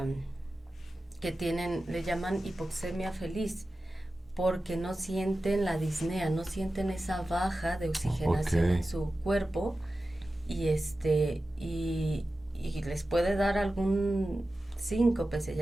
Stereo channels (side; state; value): both; normal; correlation 0.94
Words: le llaman hipoxemia feliz, porque no sienten la disnea, no sienten esa baja de oxigenación en su cuerpo, y les puede dar algún síncope, se